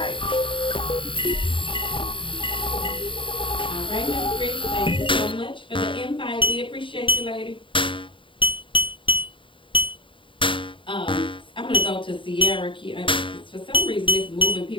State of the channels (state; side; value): late; right; 0.25 ms